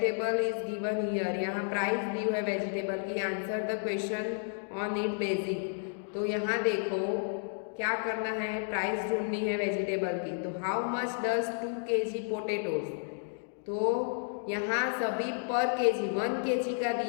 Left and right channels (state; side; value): silent; right; digital silence